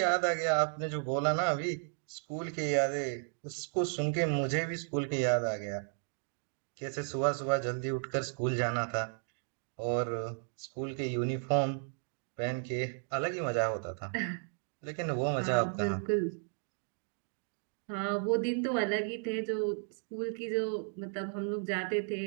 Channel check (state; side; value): silent; left; 55 dB below the other